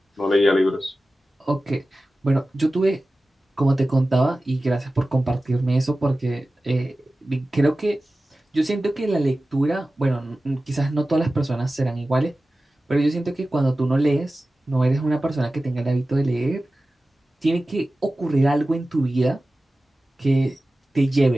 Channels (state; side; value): normal; both; correlation 0.95